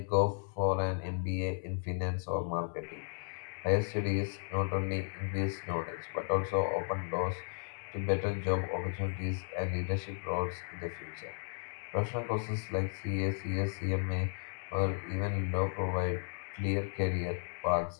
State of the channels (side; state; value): right; silent; 55 dB below the other